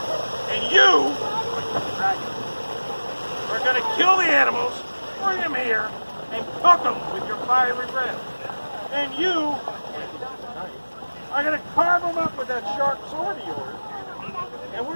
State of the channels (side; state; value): both; inverted; correlation -1.00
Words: and you, the dragon, are going to kill the animals, bring them here, and cook them with your fiery breath. And you are going to carve them up with that sharp sword of yours, and we're